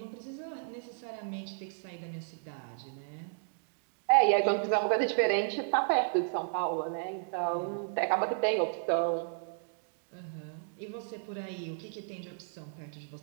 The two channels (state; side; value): silent; left; digital silence